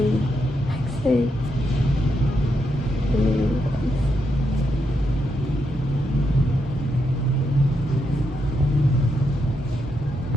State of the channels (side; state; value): both; normal; correlation 0.82